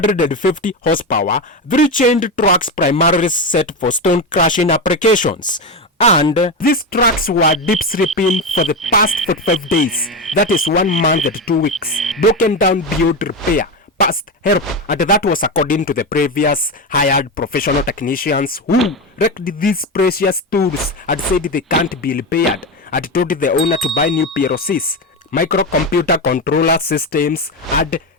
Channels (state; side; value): normal; both; correlation 0.16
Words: horsepower, 3 chained trucks primarily set for stone crushing applications. And these trucks were deep sleeping for the past 45 days, that is 1 month and 2 weeks, broken down beyond repair, past help, and that was according to the previous hired professional technicians who wrecked these precious tools and said they can't be repaired, and told the owner to buy new PLCs, microcomputer controller systems, and